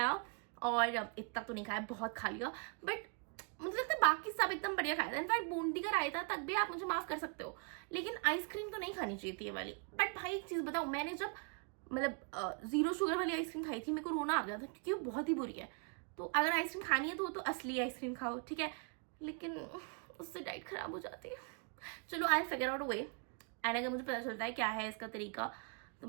और इतना तो नहीं खाया, बहुत खा लिया, बट मुझे लगता है बाकी सब एकदम बढ़िया खाया था। इनफैक्ट बूंदी का रायता तक भी आप मुझे माफ कर सकते हो, लेकिन आइसक्रीम तो नहीं खानी चाहिए थी ये वाली। बट भाई एक चीज बताऊं, मैंने जब मतलब 0 शुगर वाली आइसक्रीम खाई थी, मेरे को रोना आ गया था, क्योंकि वो बहुत ही बुरी है। तो अगर आइसक्रीम खानी है तो वो तो असली आइसक्रीम खाओ, ठीक है, लेकिन उससे डाइट खराब हो जाती है। चलो I figure out a way, and अगर मुझे पता चलता है क्या है इसका तरीका तो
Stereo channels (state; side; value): quieter; left; 37.8 dB